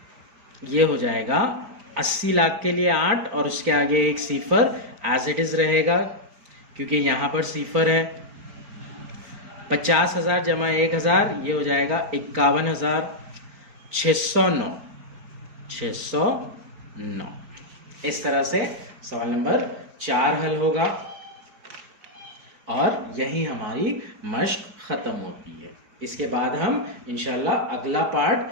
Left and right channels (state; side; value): late; left; 4.7 ms